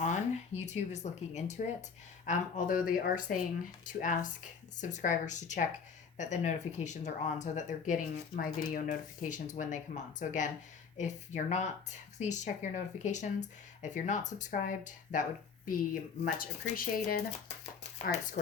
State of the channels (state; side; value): quieter; right; 5.9 dB